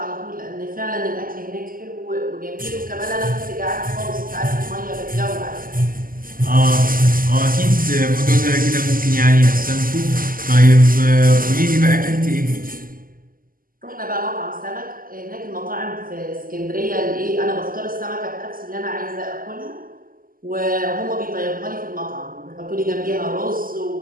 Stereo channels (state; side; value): late; left; 0.41 ms